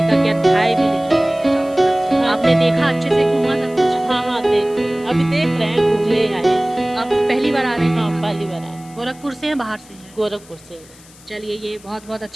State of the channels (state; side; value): noise; left; hiss, 24 dB below the sound